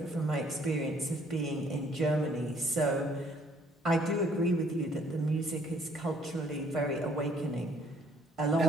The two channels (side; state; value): both; normal; correlation 0.62